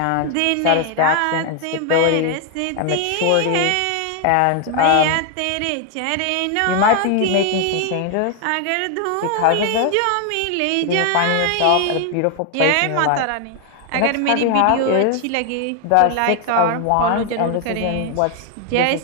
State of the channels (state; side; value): different; both; correlation 0.01